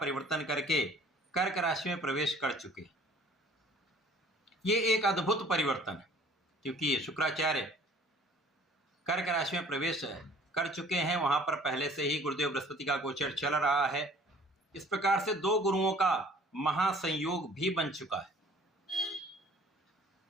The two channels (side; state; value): both; normal; correlation 0.53